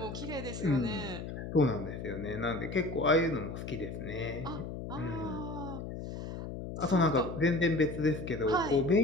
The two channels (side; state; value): left; noise; hum, 7 dB below the sound